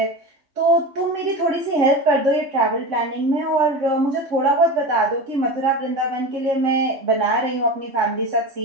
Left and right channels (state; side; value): late; left; 3.6 ms